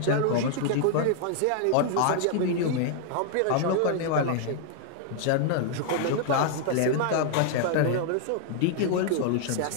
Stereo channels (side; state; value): both; different; correlation 0.00